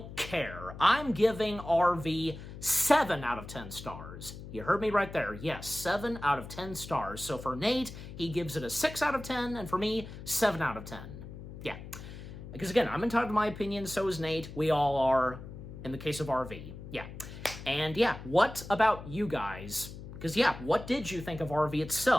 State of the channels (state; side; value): noise; left; hum, 12 dB below the sound